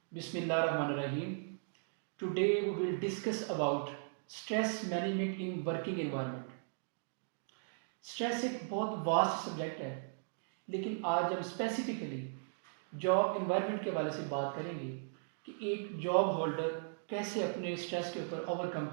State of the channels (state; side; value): silent; left; digital silence